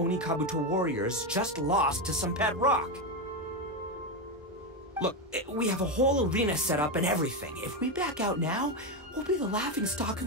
Kabuto warriors just lost to some pet rock. Look, we have a whole arena set up and everything. If we back out now, we'll be the laughingstock of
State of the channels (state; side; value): normal; both; correlation 0.10